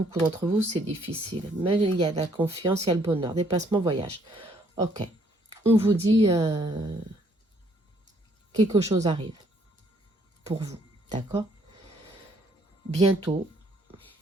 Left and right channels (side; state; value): both; normal; correlation 0.66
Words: d'entre vous, c'est difficile. Mais il y a la confiance, il y a le bonheur, déplacement, voyage. Ok, on vous dit quelque chose arrive pour vous, d'accord? Bientôt,